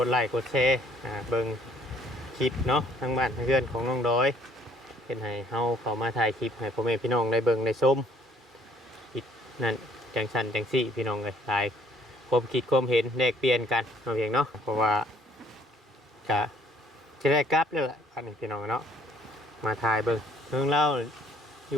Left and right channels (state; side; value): normal; both; correlation 0.61